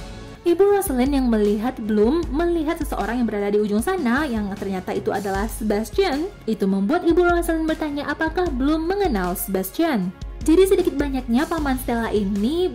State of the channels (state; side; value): identical; both; correlation 1.00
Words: Ibu Rosalind yang melihat Bloom melihat seseorang yang berada di ujung sana yang ternyata itu adalah Sebastian. Itu membuat Ibu Rosalind bertanya apakah Bloom mengenal Sebastian. Jadi sedikit banyaknya paman Stella ini